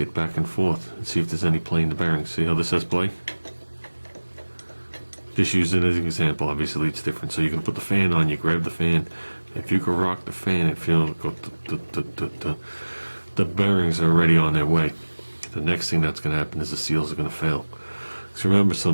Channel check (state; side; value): inverted; both; correlation -1.00